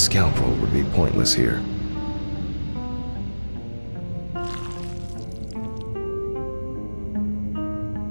would be pointless here.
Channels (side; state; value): both; inverted; correlation -1.00